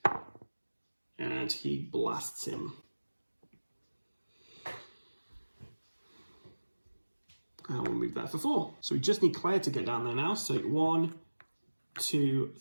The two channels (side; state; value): both; inverted; correlation -1.00